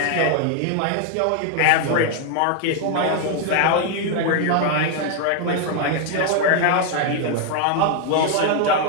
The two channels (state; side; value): different; both; correlation 0.00